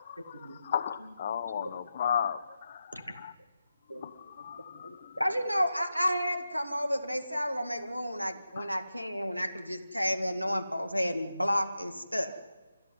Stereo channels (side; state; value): both; inverted; correlation -0.89